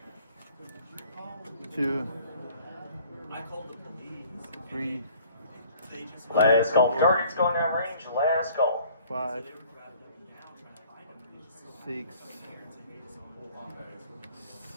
2, 3, Last call. Target's going down range. Last call. 5, 6,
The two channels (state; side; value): inverted; both; correlation -0.54